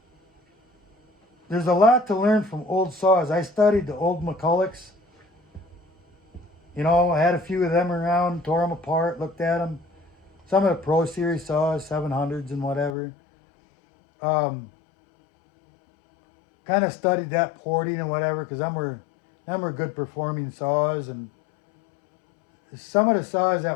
there's a lot to learn from old saws. I studied the old McCullochs. You know, I had a few of them around, tore them apart, looked at them. Some of the Pro Series saws, 700s and whatever. Kind of studied that porting and whatever, because them were good performing saws. And some of the saws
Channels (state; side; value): drops out; right; at 12.9 s